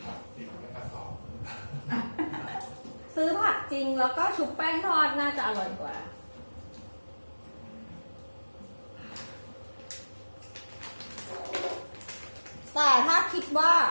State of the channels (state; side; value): inverted; both; correlation -1.00